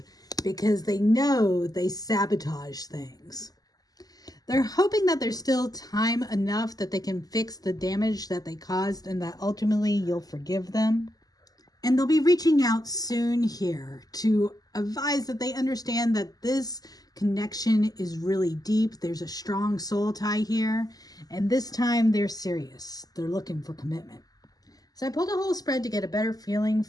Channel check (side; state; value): right; late; 0.18 ms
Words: because they know they sabotage things. They're hoping that there's still time enough that they can fix the damage that they caused and that ultimately you'll forgive them. And they'll be reaching out soon here to advise that they understand that this connection is really deep. There's a strong soul tie here. And this time they're serious. They're looking for commitment. So I pulled a whole spread to get a better feeling